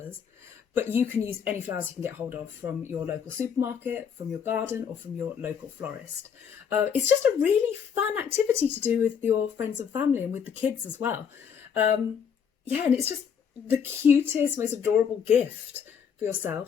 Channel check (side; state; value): right; quieter; 7.3 dB